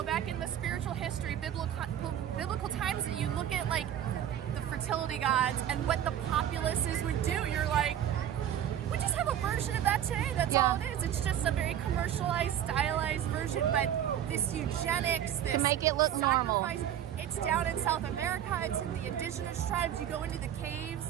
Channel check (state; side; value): quieter; left; 10.5 dB